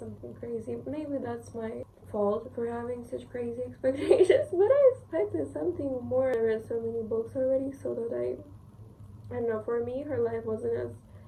crazy. Maybe that's my fault for having such crazy expectations, but I expected something more. I read so many books already, so that I don't know, for me her life wasn't as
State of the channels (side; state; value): both; identical; correlation 1.00